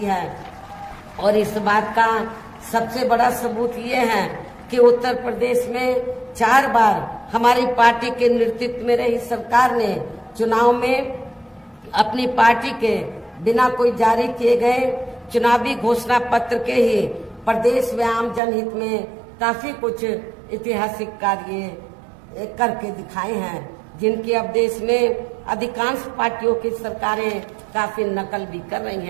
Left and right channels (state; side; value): drops out; left; at 18.4 s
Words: है। और इस बात का सबसे बड़ा सबूत ये है कि उत्तर प्रदेश में 4 बार हमारी पार्टी के नेतृत्व में रही सरकार ने चुनाव में अपनी पार्टी के बिना कोई जारी किए गए चुनावी घोषणा पत्र के ही प्रदेश व आम जनहित में काफी कुछ ऐतिहासिक कार्य करके दिखाए हैं, जिनकी अब देश में अधिकांश पार्टियों की सरकारें काफी नकल भी कर रही